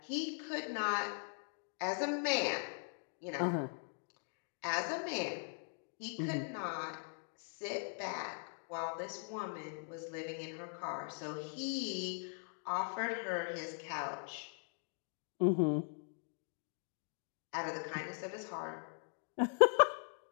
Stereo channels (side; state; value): right; silent; 51 dB below the other